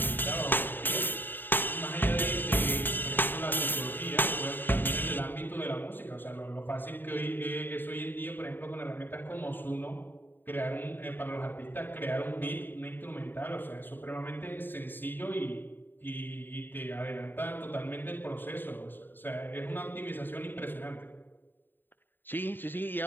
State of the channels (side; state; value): right; late; 0.094 ms